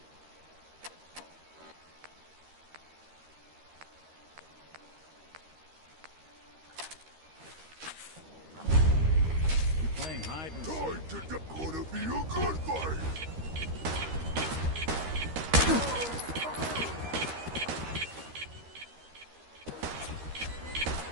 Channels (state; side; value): late; left; 13 ms